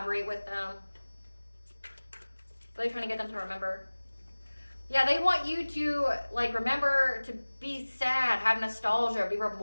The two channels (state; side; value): inverted; both; correlation -1.00